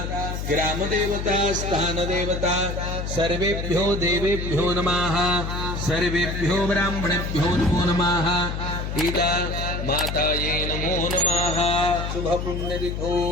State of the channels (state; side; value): noise; left; hum, 4 dB below the sound